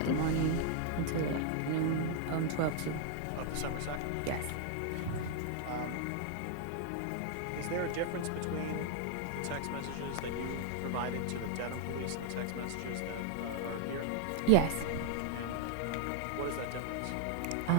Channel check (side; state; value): both; different; correlation 0.00